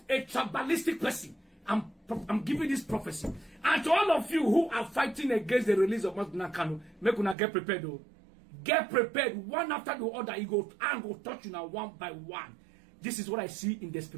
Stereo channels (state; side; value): drops out; left; at 7.4 s